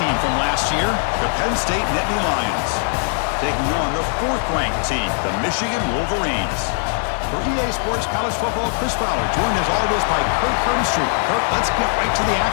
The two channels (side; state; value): right; silent; 57 dB below the other